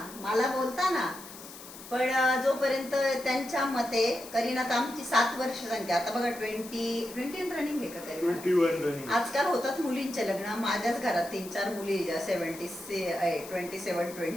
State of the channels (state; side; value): noise; left; hiss, 15 dB below the sound